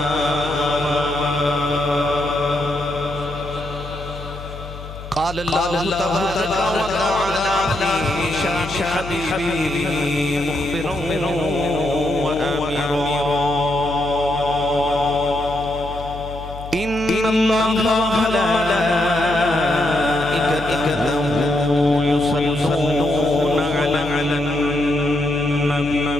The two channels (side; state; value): left; noise; hum, 13 dB below the sound